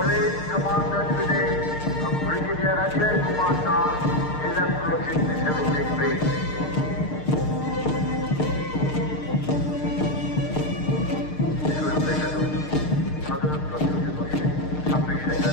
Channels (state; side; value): late; right; 6.6 ms